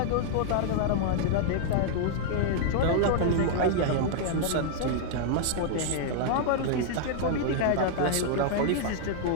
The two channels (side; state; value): both; different; correlation 0.00